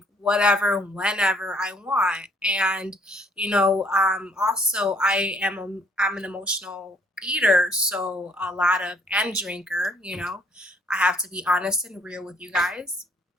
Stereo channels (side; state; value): both; normal; correlation 0.63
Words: whatever, whenever I want. And, also I'm an emotional eater, so a lot of, and drinker, I have to be honest and real with you guys.